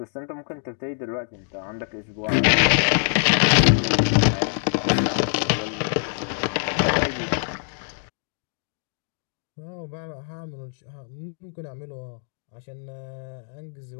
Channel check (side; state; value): right; silent; digital silence